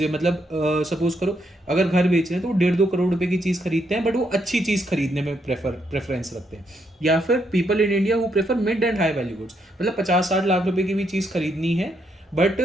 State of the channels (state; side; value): normal; both; correlation 0.77